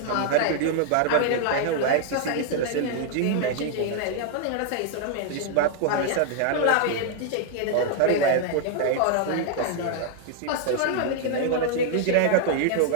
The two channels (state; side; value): different; both; correlation 0.00